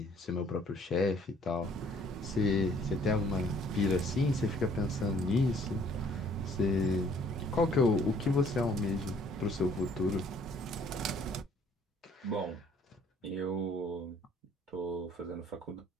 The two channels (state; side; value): normal; both; correlation 0.60